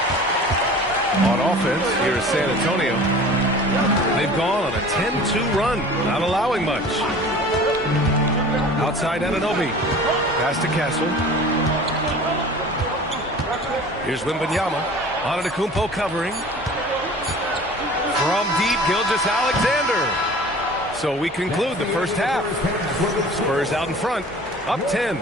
On offense, here is San Antonio. They've gone on a 10-2 run, not allowing much. Outside Anunoby. Pass to Castle. Here's Wembanyama. Antetokounmpo covering. From deep, Gilgeous-Alexander. So we conclude the first half. Spurs out in front, up 10.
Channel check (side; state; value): both; normal; correlation 0.42